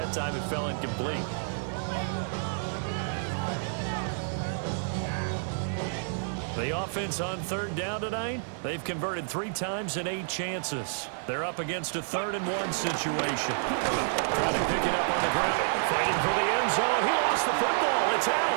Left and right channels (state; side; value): silent; left; digital silence